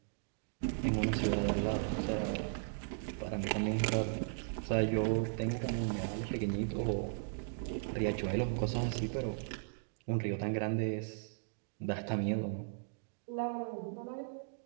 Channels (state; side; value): silent; left; digital silence